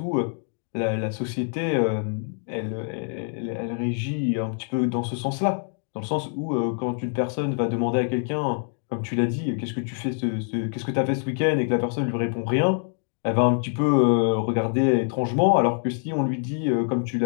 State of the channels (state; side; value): silent; right; 62 dB below the other